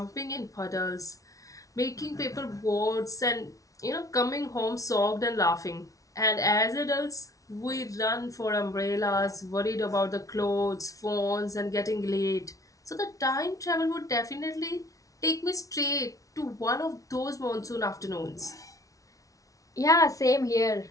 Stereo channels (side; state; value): right; late; 0.17 ms